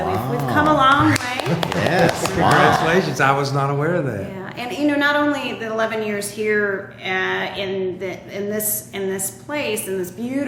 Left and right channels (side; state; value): both; identical; correlation 1.00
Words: we've come a long way. Yes, Congratulations. I was not aware of that. Yeah, and not only the 11 years here in this place, in this